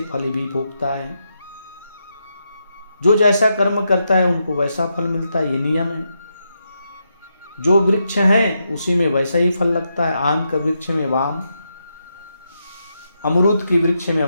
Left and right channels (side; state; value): both; inverted; correlation -0.83